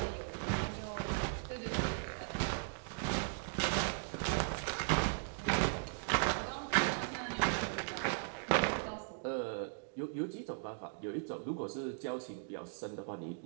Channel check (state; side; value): silent; left; digital silence